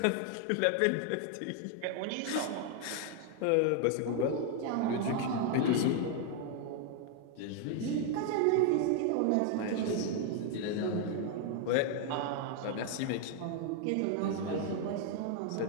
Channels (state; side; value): different; both; correlation 0.00